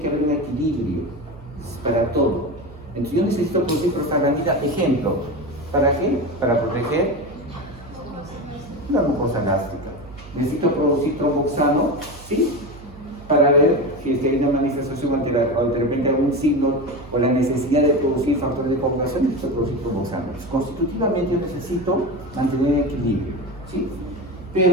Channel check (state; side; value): noise; right; hum, 18 dB below the sound